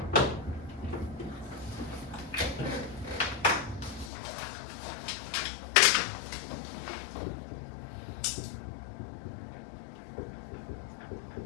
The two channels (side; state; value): right; drops out; at 4.1 s